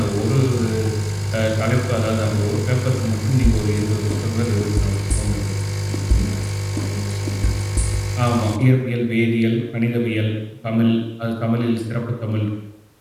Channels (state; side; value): identical; both; correlation 1.00